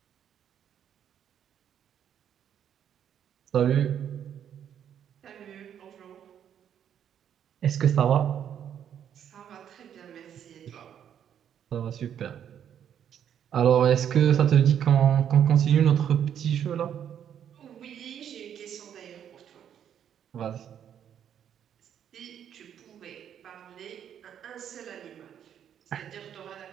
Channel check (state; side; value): quieter; left; 9.3 dB